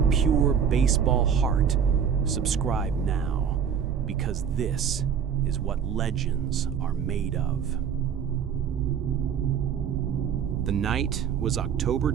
pure baseball heart, subscribe now, because this is what legends are made of. The night was October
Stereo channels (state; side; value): quieter; left; 7.6 dB